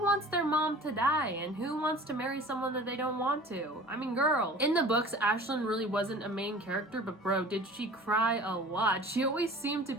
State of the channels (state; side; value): normal; both; correlation 0.43